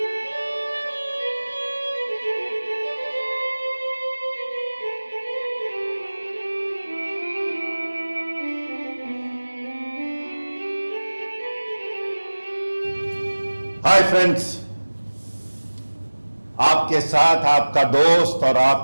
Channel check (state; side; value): inverted; both; correlation -1.00